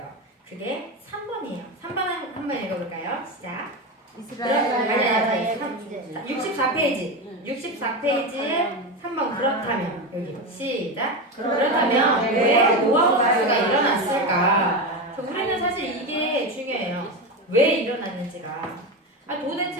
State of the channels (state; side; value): normal; both; correlation 0.18